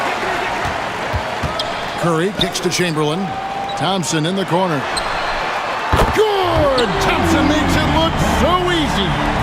Curry kicks to Chamberlain. Thompson in the corner. Good! Thompson makes it look so easy.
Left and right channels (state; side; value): identical; both; correlation 1.00